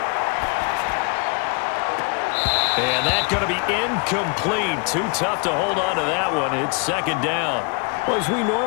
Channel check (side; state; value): right; quieter; 34.1 dB